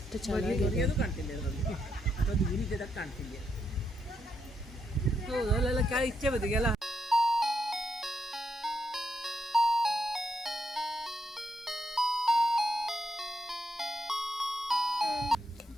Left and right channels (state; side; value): normal; both; correlation 0.80